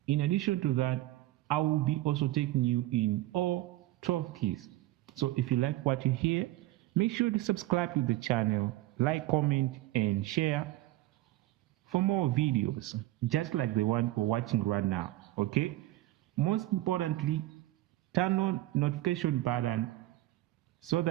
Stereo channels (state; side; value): quieter; left; 16.7 dB